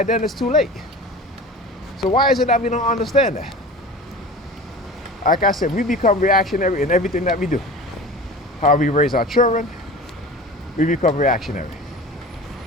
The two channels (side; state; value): both; normal; correlation 0.36